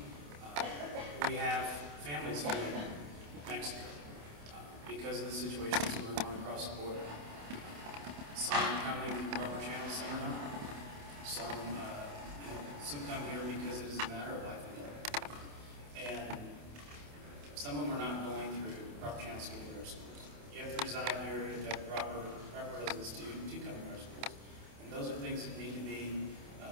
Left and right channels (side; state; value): left; late; 28 ms